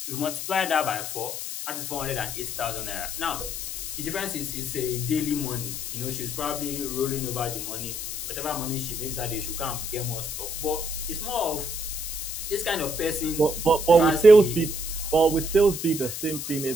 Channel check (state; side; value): noise; left; hiss, 5 dB below the sound